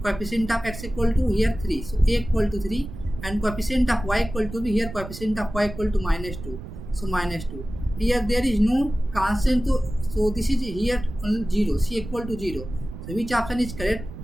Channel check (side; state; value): right; noise; rumble, 11 dB below the sound